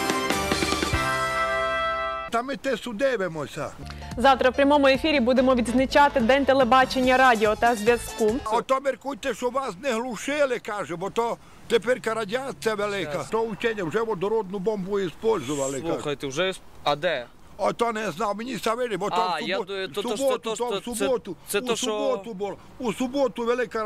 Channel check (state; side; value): identical; both; correlation 1.00